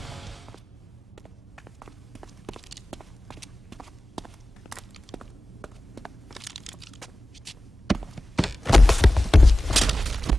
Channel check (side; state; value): both; normal; correlation 0.96